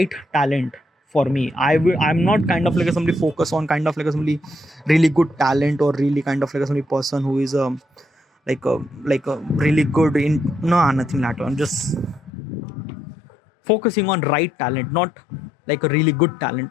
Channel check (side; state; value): right; drops out; at 12.3 s